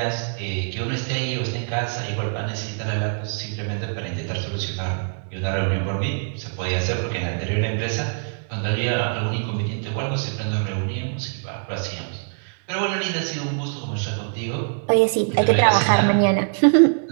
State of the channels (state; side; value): silent; left; digital silence